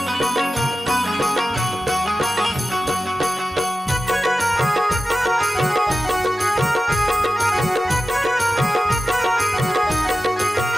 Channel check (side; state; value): both; normal; correlation 0.94